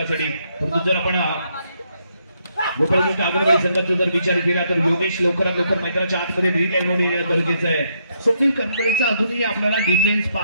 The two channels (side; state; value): both; inverted; correlation -0.75